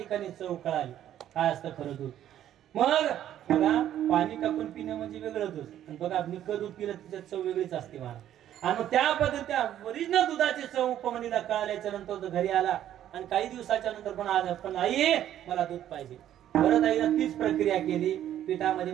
चव कळाली काय असतं खरं दूध. मग बघा पाणी टाकून पिणं म्हणजे वेगळं दूध आणि बघा निक्क दूध पिलं त्याच्यात चव वेगळीच असते महाराज. आणि मग त्या पद्धती ओरिजिनल दुधाची चव उपमन्यूला कळाल्याच्या नंतर तो घरी आला आणि काही दिवसाच्या नंतर पण आई मला दूध पाहिजे. परत आईनं तीच प्रक्रिया केली. पिठामध्ये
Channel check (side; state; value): left; quieter; 11.4 dB